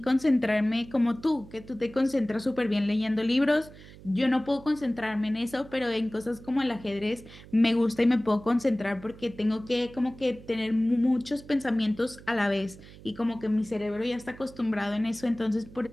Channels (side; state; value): right; noise; hum, 19 dB below the sound